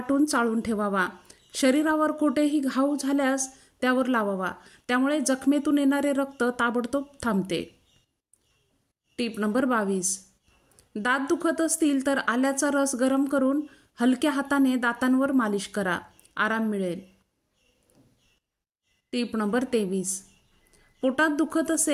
चाळून ठेवावा. शरीरावर कोठेही घाव झाल्यास त्यावर लावावा. त्यामुळे जखमेतून येणारे रक्त ताबडतोब थांबते. Tip number 22. दात दुखत असतील तर आल्याचा रस गरम करून हलक्या हाताने दातांवर मालिश करा. आराम मिळेल. Tip number 23. पोटात दुखत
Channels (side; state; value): both; identical; correlation 1.00